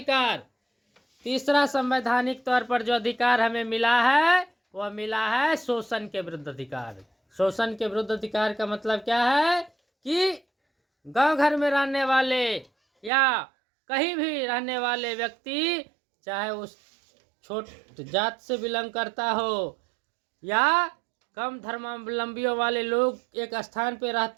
तीसरा संवैधानिक तौर पर जो अधिकार हमें मिला है वह मिला है शोषण के विरुद्ध अधिकार। शोषण के विरुद्ध अधिकार का मतलब क्या है कि गांव घर में रहने वाले या कहीं भी रहने वाले व्यक्ति, चाहे उस छोट जात से बिलोंग करता हो या कम धर्मावलंबियों वाले लोग एक स्थान पे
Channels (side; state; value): left; drops out; at 13.1 s